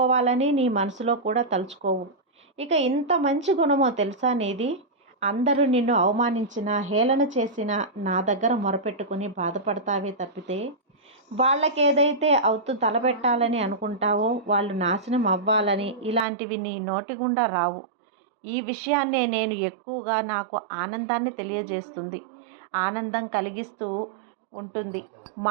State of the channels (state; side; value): drops out; left; at 16.2 s